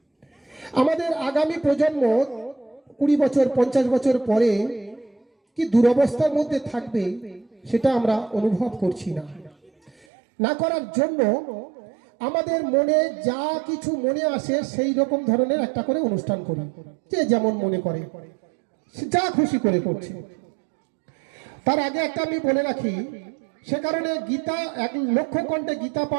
আমাদের আগামী প্রজন্ম 20 বছর 50 বছর পরে কি দুরবস্থার মধ্যে থাকবে সেটা আমরা অনুভব করছি না। না করার জন্য আমাদের মনে যা কিছু মনে আসে সেই রকম ধরনের একটা করে অনুষ্ঠান করি, যে যেমন মনে করে যা খুশি করে করছে। তার আগে একটা আমি বলে রাখি, সে কারণে গীতা 1 লক্ষ কণ্ঠে গীতা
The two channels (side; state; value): left; drops out; at 10.1 s